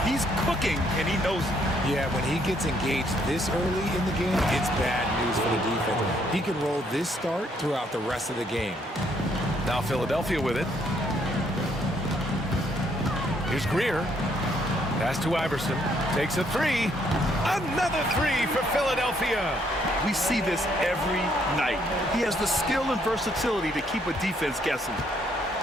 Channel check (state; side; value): normal; both; correlation 0.70